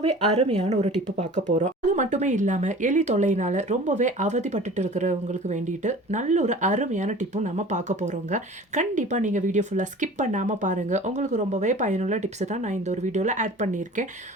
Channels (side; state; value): both; normal; correlation 0.42